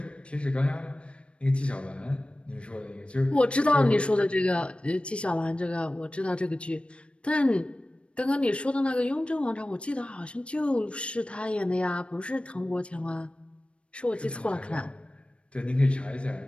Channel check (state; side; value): late; right; 0.059 ms